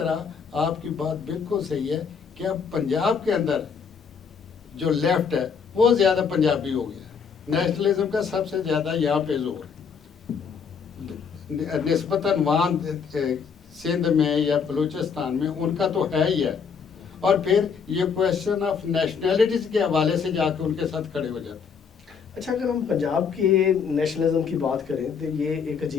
آپ کی بات بالکل صحیح ہے کہ اب پنجاب کے اندر جو لیفٹ ہے وہ زیادہ پنجابی ہو گیا، نیشنلزم کا سب سے زیادہ یہاں پہ زور نسبتاً وہاں سندھ میں یا بلوچستان میں ان کا تو ہے ہی ہے، اور پھر یہ کویشچن آف نیشنلٹیز کے حوالے سے جا کے ان کے ساتھ کھڑے ہو جاتے ہیں۔ اچھا، اگر ہم پنجاب کے نیشنلزم کی بات کریں تو یہ ایک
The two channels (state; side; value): quieter; right; 6.2 dB